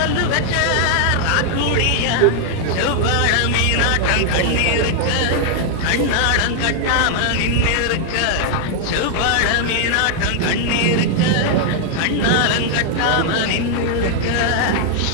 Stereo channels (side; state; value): both; different; correlation 0.00